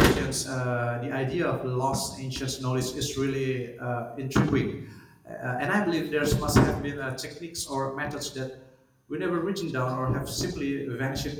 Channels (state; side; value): identical; both; correlation 1.00